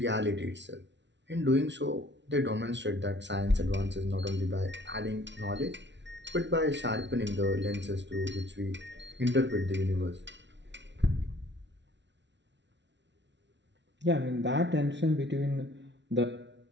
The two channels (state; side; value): late; left; 0.52 ms